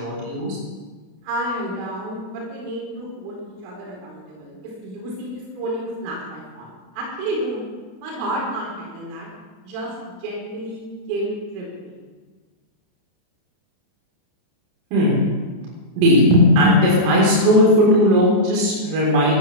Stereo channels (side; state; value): left; late; 33 ms